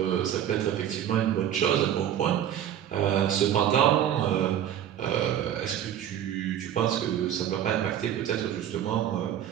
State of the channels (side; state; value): left; quieter; 10.5 dB